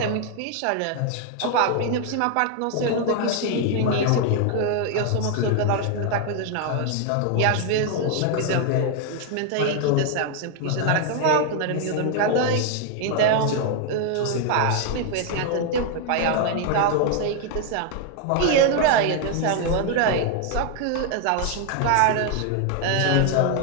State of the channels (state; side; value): different; both; correlation 0.00